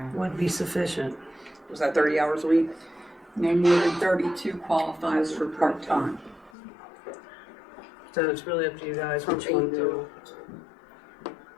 would be sufficient. Was that 30 hours a week? No more than 32 qualifies for part-time. So it's really up to you guys From which one 8 to. to-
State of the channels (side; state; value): right; drops out; at 6.5 s